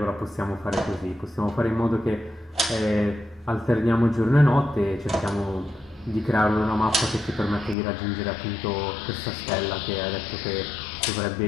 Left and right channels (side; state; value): right; drops out; at 7.8 s